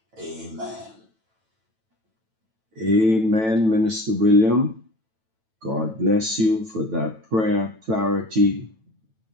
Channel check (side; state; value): left; late; 9.1 ms